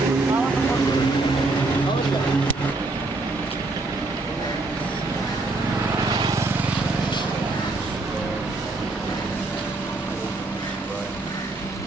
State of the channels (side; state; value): left; quieter; 3.2 dB